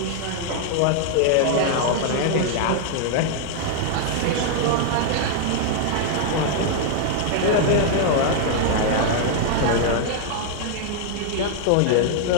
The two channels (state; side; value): different; both; correlation 0.00